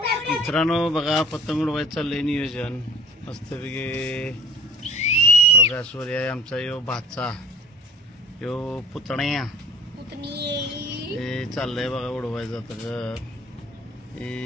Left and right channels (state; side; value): normal; both; correlation 0.47